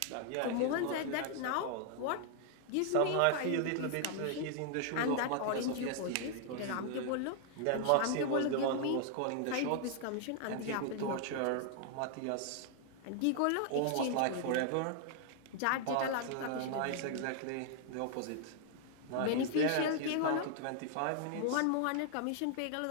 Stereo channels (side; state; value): both; different; correlation 0.00